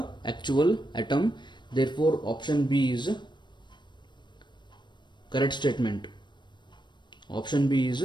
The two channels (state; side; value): late; right; 0.22 ms